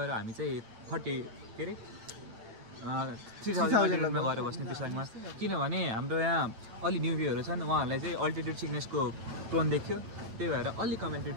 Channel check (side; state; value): left; late; 9.0 ms